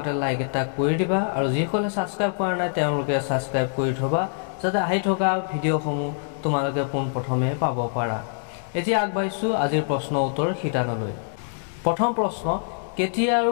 লাইক এটা কৰি দিবা আৰু যিসকলে সাবস্ক্ৰাইব কৰা নাই তেওঁলোকে সাবস্ক্ৰাইব কৰি থবা যাতে আহি থকা ভিডিঅ'সমূহ তোমালোকে পোনপ্ৰথমে পাব পাৰা। এতিয়া আগবাঢ়িছো আজিৰ প্ৰশ্ন উত্তৰ শিতানলৈ। প্ৰথম প্ৰশ্ন, কেতিয়া আৰু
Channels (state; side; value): silent; right; digital silence